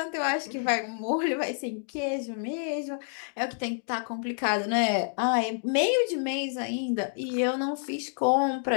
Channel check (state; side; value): silent; right; digital silence